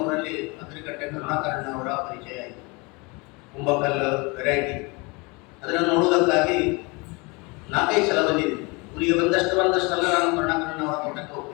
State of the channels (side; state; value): right; quieter; 27.6 dB